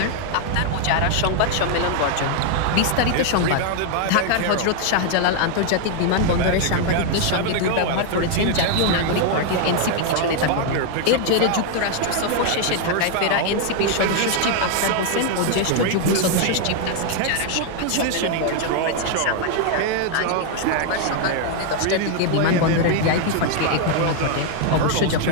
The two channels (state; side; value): different; both; correlation 0.00